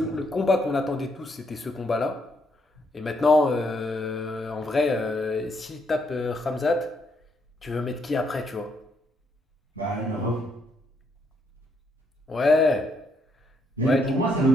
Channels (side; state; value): both; normal; correlation 0.74